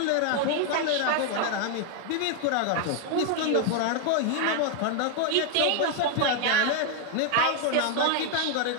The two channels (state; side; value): different; both; correlation 0.01